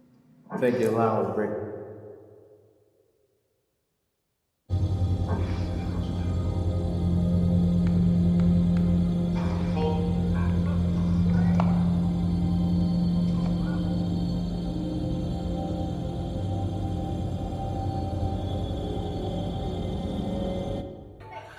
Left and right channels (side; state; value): both; identical; correlation 1.00